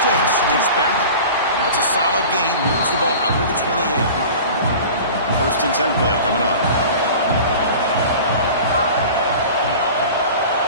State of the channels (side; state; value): both; inverted; correlation -0.38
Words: It's back. That's a solid gain. Moves the ball out to the 28. 1st and 10 play coming up.